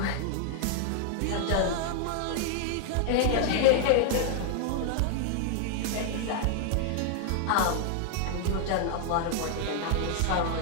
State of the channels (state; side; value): different; both; correlation 0.00